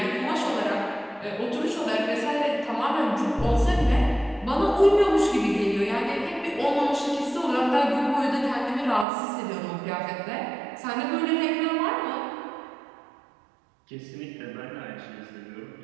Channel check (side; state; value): left; drops out; at 9.1 s